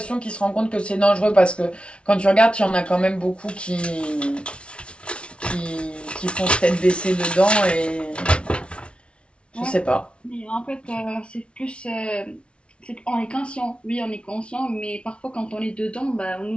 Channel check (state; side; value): late; right; 0.059 ms